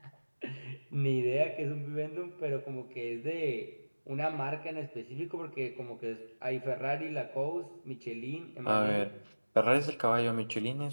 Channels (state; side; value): inverted; both; correlation -1.00